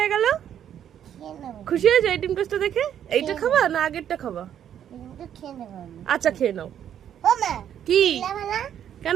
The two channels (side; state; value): left; quieter; 9.8 dB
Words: গেল? খুশি হয়ে যায় ডিম টোস্টটা দেখে? এইটা খাবা না আগেরটা খাবা? আচ্ছা খেয়ে নাও। কি?